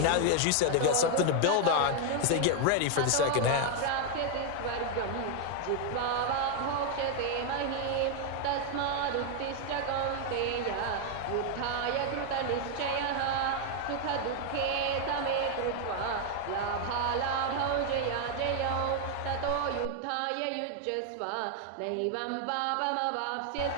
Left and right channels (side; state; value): both; different; correlation 0.00